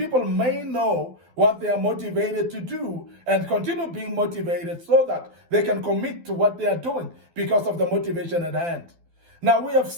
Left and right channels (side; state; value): left; late; 12 ms